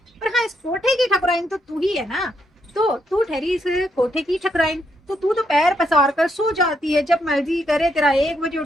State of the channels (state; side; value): normal; both; correlation 0.77